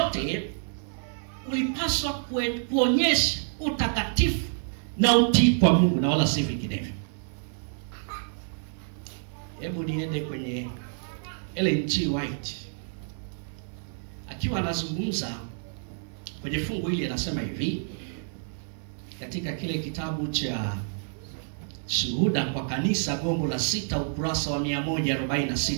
ulipaswa kuonyesha utakatifu na utii kwa Mungu na wala si vinginevyo. Hebu niende kwenye Ellen G. White akiwa anazungumza kwenye fungu hili, anasema hivi katika kile kitabu cha Shuhuda kwa Kanisa, gombo la 6, ukurasa wa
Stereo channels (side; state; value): left; silent; 59 dB below the other